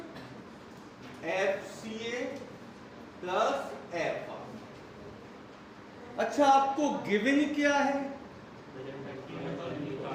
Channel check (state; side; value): identical; both; correlation 1.00